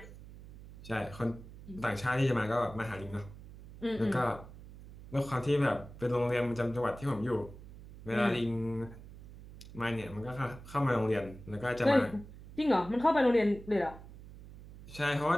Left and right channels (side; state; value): right; noise; hum, 16 dB below the sound